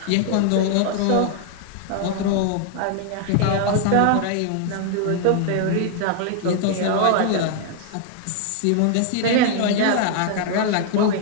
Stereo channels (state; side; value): different; both; correlation 0.00